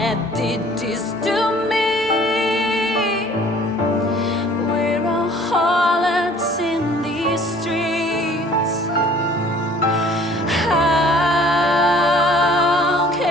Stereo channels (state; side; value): normal; both; correlation 0.53